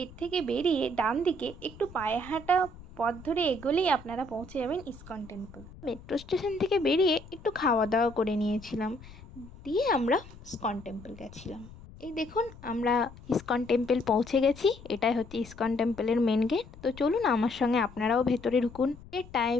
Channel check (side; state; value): left; noise; rumble, 18 dB below the sound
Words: থেকে বেরিয়ে ডান দিকে একটু পায়ে হাঁটা পথ ধরে এগোলেই আপনারা পৌঁছে যাবেন ইস্কন টেম্পল। মেট্রো স্টেশন থেকে বেরিয়ে একটু খাওয়া দাওয়া করে নিয়েছিলাম, দিয়ে আমরা ইস্কন টেম্পল গেছিলাম। এই দেখুন আমরা ইস্কন টেম্পল পৌঁছে গেছি। এটাই হচ্ছে ইস্কন টেম্পলের মেন গেট। তো চলুন আমার সঙ্গে আপনারাও ভেতরে ঢুকুন। এর